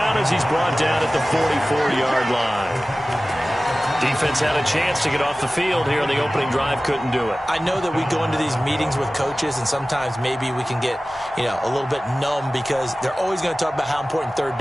as he's brought down at the 44-yard line. Defense had a chance to get off the field here on the opening drive, couldn't do it. I know that we go into these meetings with coaches, and sometimes maybe we can get, a little bit numb because they're always going to talk about how important 3rd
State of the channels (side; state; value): both; normal; correlation 0.97